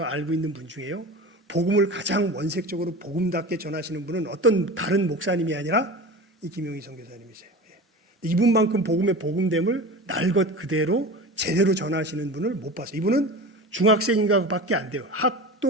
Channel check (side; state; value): both; normal; correlation 0.32